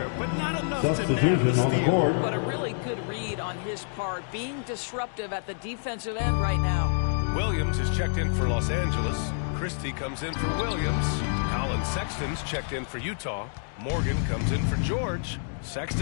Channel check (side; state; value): right; silent; digital silence